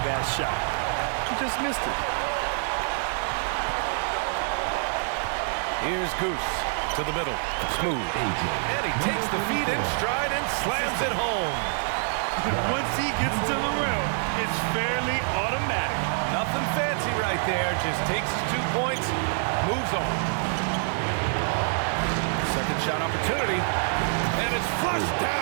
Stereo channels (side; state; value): left; silent; 61 dB below the other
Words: that shot. He just missed it. Here's Goose to the middle. Smooth. And he takes the feet in stride and slams it home. Once he gets to the rim, it's fairly automatic. Nothing fancy right there. Just takes his 2 points, moves on. Second shot opportunity. And it's flushed